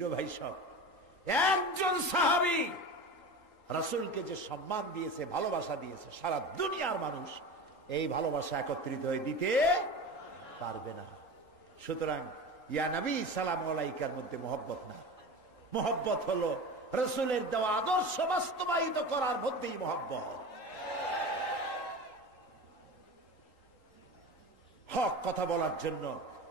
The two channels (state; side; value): late; right; 3.8 ms